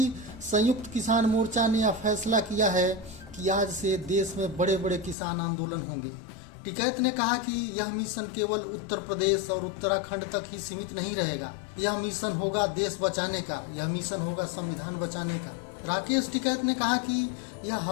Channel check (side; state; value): right; drops out; at 5.2 s